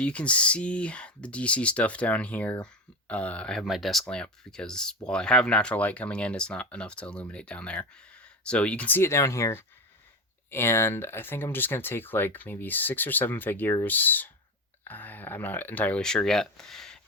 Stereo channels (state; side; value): normal; both; correlation 0.21